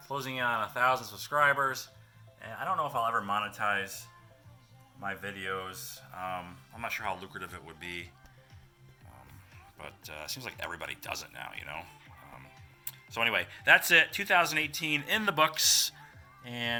1,000 subscribers, and I don't know if I'll ever monetize my videos. I'm not sure how lucrative it would be. But it seems like everybody does it now, So anyway, that's it. 2018 in the books.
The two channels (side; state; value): both; identical; correlation 1.00